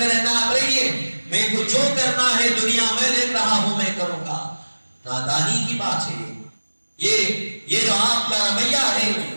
رہنا، آپ رہیے، میں کو جو کرنا ہے دنیا میں دیکھ رہا ہوں میں کروں گا۔ نادانی کی بات ہے یہ جو آپ کا رویہ ہے،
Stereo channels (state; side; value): inverted; both; correlation -1.00